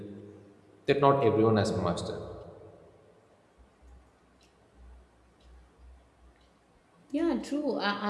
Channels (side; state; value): both; identical; correlation 1.00